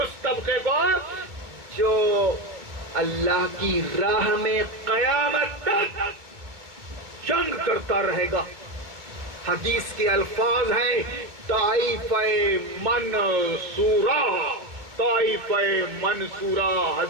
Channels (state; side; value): late; left; 2.4 ms